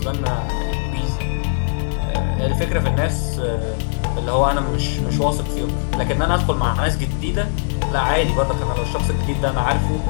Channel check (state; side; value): silent; right; 59 dB below the other